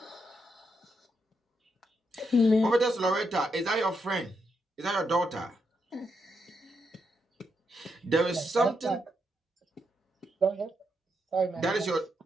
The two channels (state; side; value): normal; both; correlation 0.81